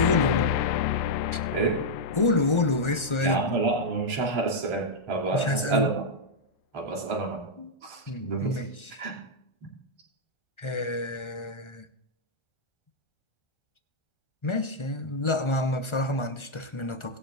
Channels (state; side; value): late; right; 1.4 ms